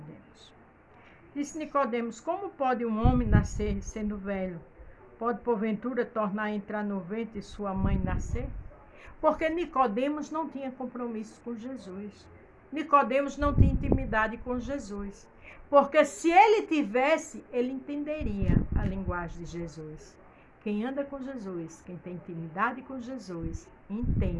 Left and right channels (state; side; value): identical; both; correlation 1.00